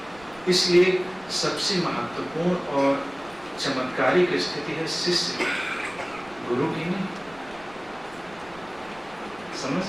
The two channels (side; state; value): right; noise; rumble, 24 dB below the sound